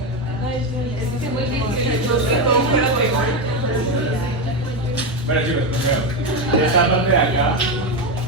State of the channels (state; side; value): normal; both; correlation 0.11